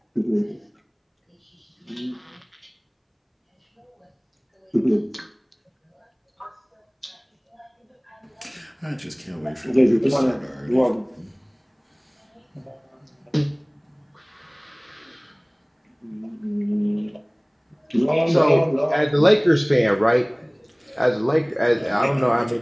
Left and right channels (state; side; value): identical; both; correlation 1.00